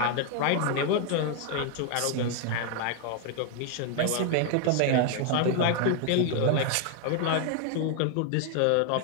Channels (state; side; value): different; both; correlation 0.00